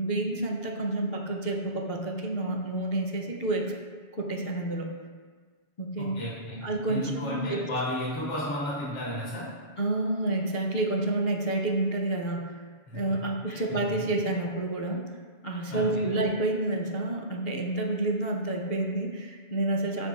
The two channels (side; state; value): right; late; 7.1 ms